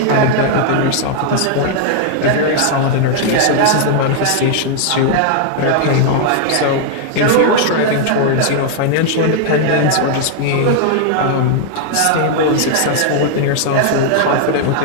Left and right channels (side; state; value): both; different; correlation 0.00